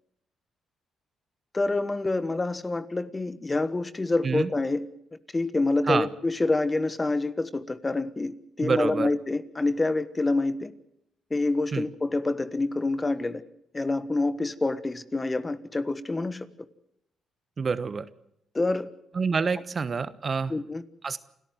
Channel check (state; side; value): normal; both; correlation 0.94